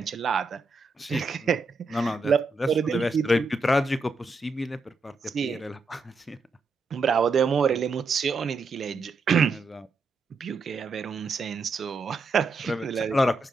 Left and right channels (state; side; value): quieter; left; 3.6 dB